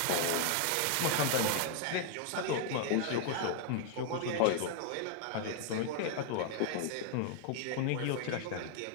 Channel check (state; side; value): different; both; correlation 0.00